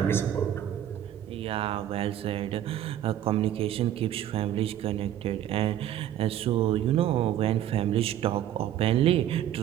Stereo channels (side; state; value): left; quieter; 11.4 dB